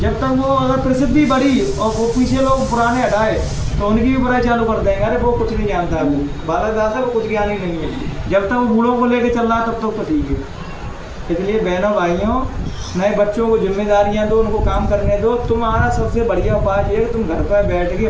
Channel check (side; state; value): both; identical; correlation 1.00